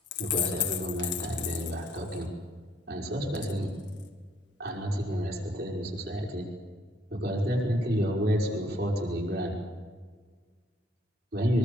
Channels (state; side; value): normal; both; correlation 0.65